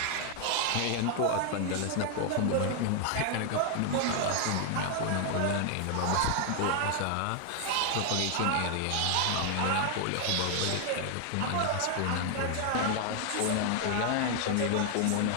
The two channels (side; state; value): both; different; correlation 0.00